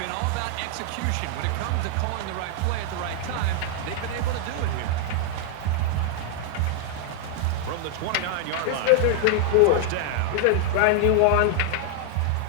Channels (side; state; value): both; different; correlation 0.00